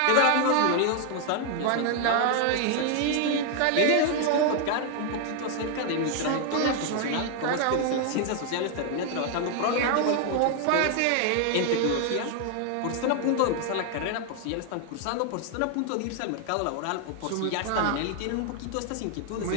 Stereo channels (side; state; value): both; different; correlation 0.00